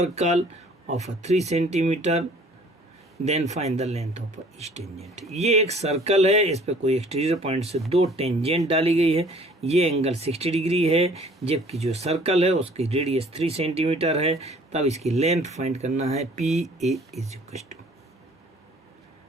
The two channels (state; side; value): normal; both; correlation 0.54